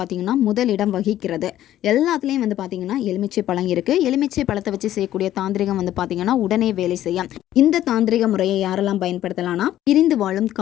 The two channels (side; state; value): right; quieter; 12.8 dB